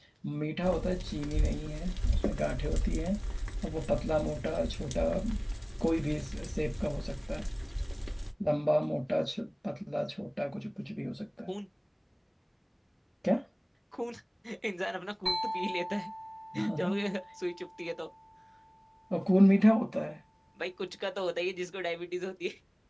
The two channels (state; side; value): identical; both; correlation 1.00